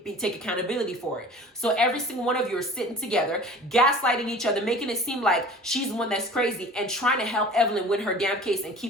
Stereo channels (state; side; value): normal; both; correlation 0.43